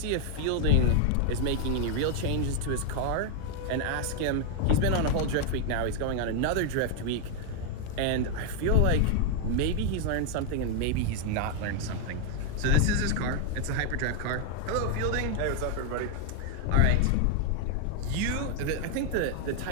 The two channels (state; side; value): different; both; correlation 0.00